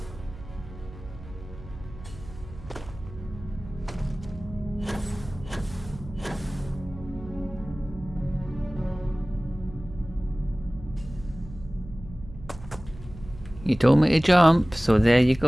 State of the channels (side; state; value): right; noise; hum, 15 dB below the sound